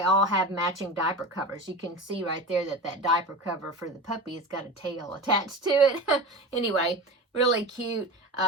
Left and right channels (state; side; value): normal; both; correlation 0.29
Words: all have matching diaper covers. You can see right there that diaper cover for the puppy has got a tail attached to it. Anyway, really cute.